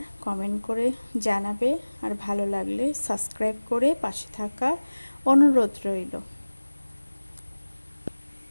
কমেন্ট করে জানাবে, আর ভালো লাগলে সাবস্ক্রাইব করে পাশে থাকার অনুরোধ রইল।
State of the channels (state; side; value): inverted; both; correlation -1.00